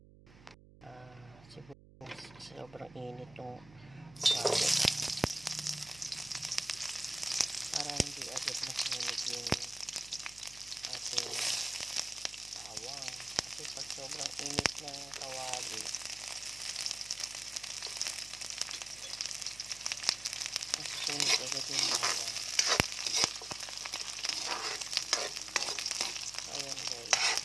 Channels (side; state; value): right; noise; hum, 21 dB below the sound